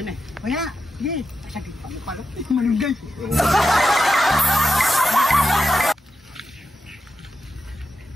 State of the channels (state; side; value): normal; both; correlation 0.89